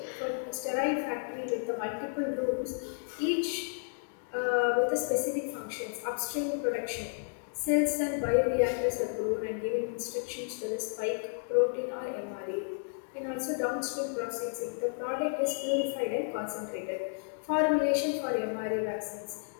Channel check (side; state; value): right; silent; digital silence